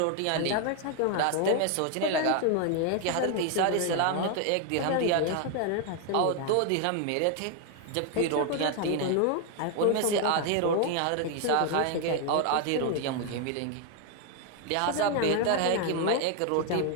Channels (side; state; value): both; different; correlation 0.01